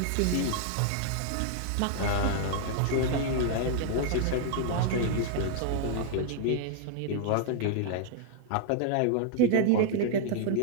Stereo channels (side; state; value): both; different; correlation 0.00